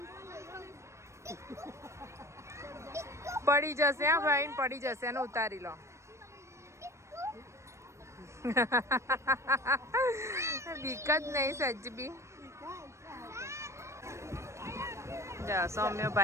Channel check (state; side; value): late; left; 0.13 ms